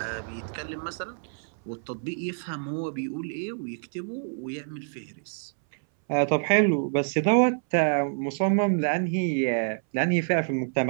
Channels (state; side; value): silent; left; 60 dB below the other